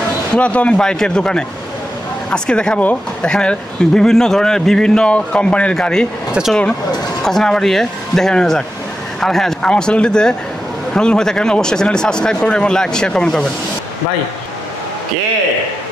পুরাতন বাইকের দোকানে। আজকে দেখাবো এখানে বিভিন্ন ধরনের বিভিন্ন কোম্পানির গাড়ি। তো চলুন কথা না বাড়িয়ে দেখে নেওয়া যাক। আর হ্যাঁ, আমার চ্যানেলটিতে নতুন হয়ে থাকেন অবশ্যই চ্যানেলটি সাবস্ক্রাইব করবেন এবং লাইক শেয়ার কমেন্ট করবেন। ভাই কে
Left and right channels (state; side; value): normal; both; correlation 0.89